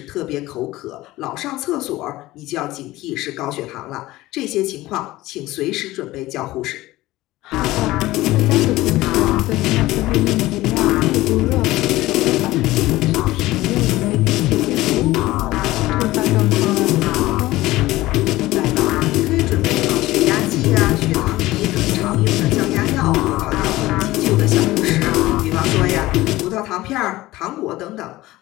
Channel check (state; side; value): quieter; right; 17.7 dB